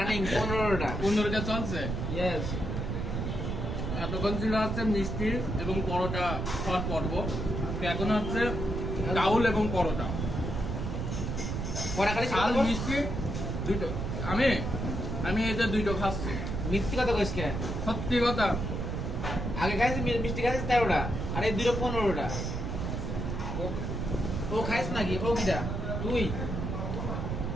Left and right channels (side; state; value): right; noise; rumble, 3 dB below the sound